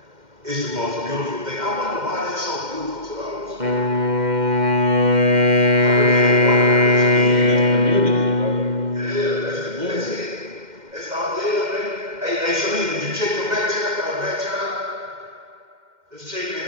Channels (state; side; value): late; left; 2.1 ms